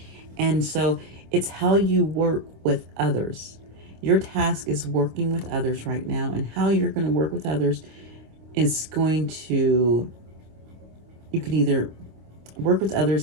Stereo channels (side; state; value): left; late; 26 ms